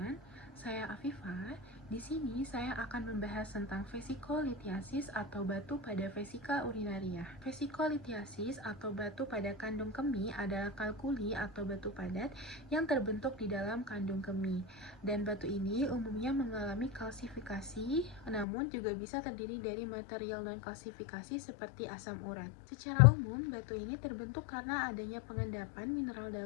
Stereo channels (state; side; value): drops out; right; at 18.4 s